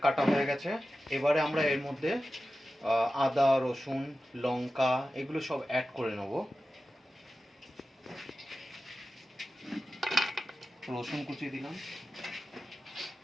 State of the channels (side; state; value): both; normal; correlation 0.93